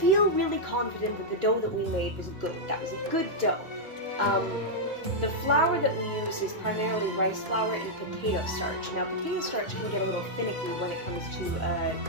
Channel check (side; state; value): left; late; 2.4 ms